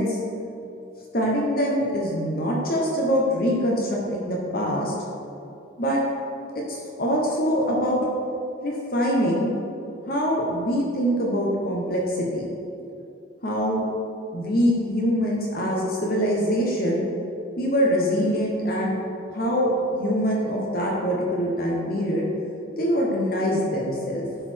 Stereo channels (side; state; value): both; normal; correlation 0.36